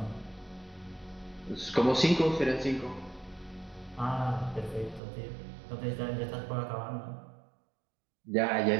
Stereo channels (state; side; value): drops out; left; at 5.0 s